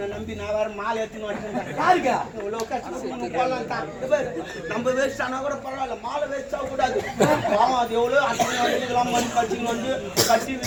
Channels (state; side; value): identical; both; correlation 1.00